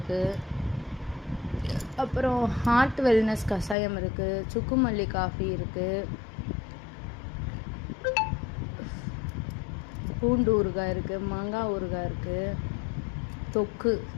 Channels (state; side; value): drops out; right; at 3.8 s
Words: அப்புறம் ஹார்ட் வெல்னஸ் கஷாயம் இருக்குது, சுக்குமல்லி காஃபி இருக்குது, பூண்டு ஊறுகாய் இருக்குது, மாங்காய் ஊறுகாய் இருக்குது, தொக்கு